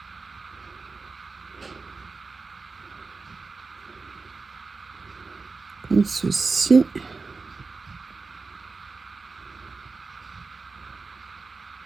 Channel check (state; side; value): quieter; left; 4.2 dB